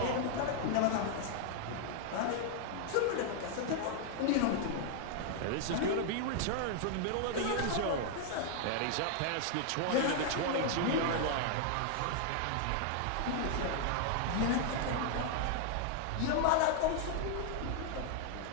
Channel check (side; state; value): both; different; correlation 0.00